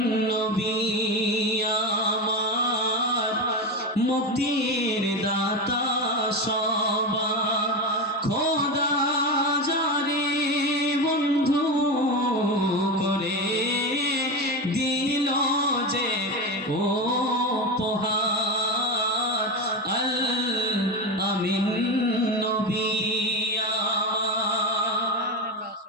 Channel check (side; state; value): both; normal; correlation 0.19